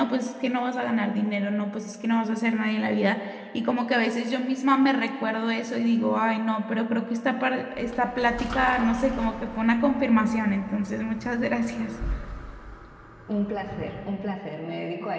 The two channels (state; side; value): identical; both; correlation 1.00